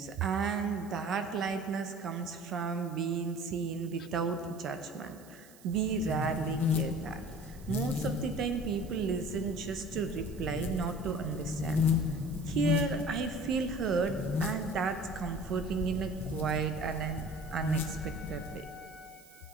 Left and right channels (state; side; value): noise; right; hiss, 23 dB below the sound